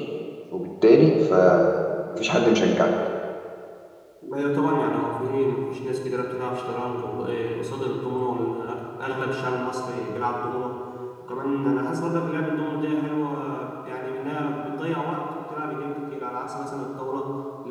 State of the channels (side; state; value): both; identical; correlation 1.00